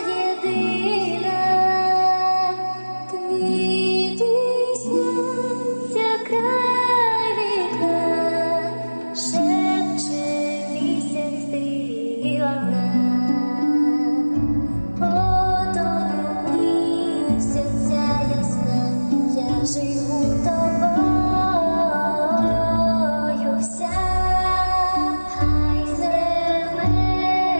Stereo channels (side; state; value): both; inverted; correlation -1.00